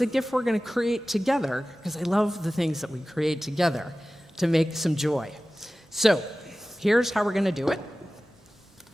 a gift we're going to create together, because I love the things that we create together to make some joy. So here's how we're going to do it.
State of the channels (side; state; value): both; normal; correlation 0.96